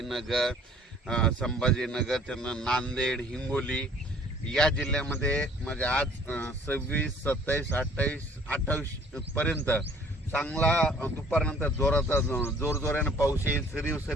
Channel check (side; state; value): both; normal; correlation 0.54